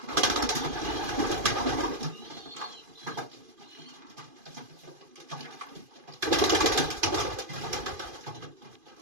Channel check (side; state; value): left; late; 2.5 ms